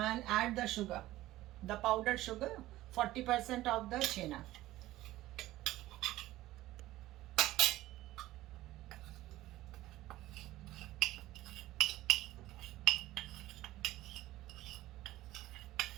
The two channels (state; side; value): quieter; left; 16.2 dB